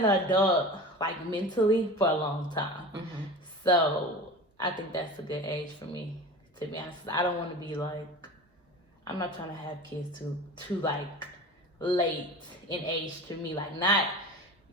an adult like mentally for a long time. So I think that's a good age for me, to be honest. I don't want to be like, I'm not trying to have kids too like late in age to me. Like, not,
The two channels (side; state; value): both; normal; correlation 0.34